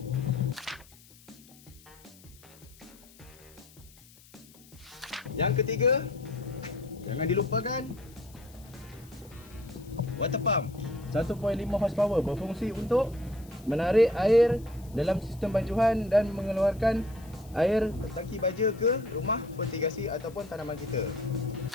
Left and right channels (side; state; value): left; noise; hiss, 24 dB below the sound